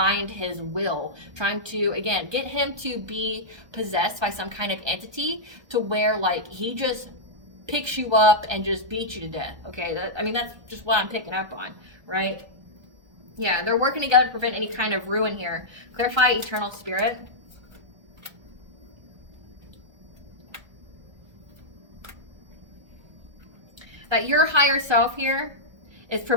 his will, trying to, again, get him to be possessed by some kind of entity to where like he just picks you up and just beats you to death. Okay, that's just what I'm picking up on, right? Yeah, they're working together to prevent any kind of ruin here. Clarify eternal spirit. That your higher self here is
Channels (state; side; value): late; left; 1.2 ms